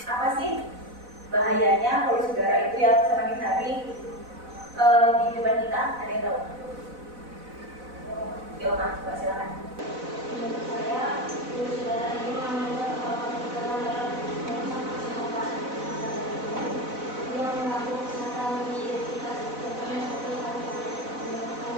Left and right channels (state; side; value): late; left; 4.0 ms